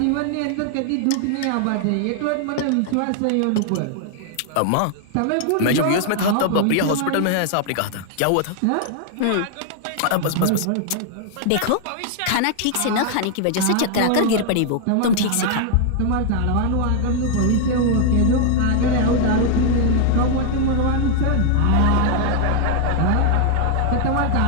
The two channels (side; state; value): both; different; correlation 0.00